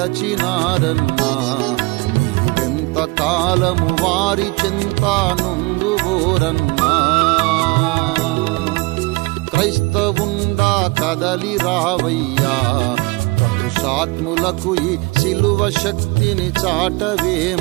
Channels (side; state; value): left; quieter; 25.5 dB